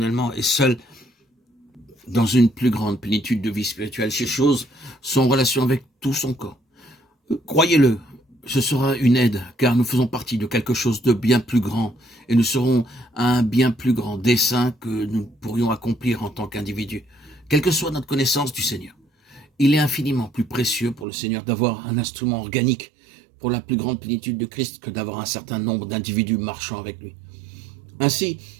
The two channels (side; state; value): left; drops out; at 21.1 s